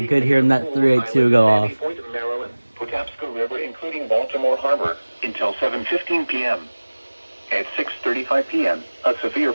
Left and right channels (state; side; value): inverted; both; correlation -1.00